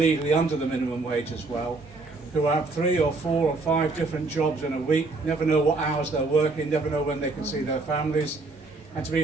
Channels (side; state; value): left; quieter; 3.5 dB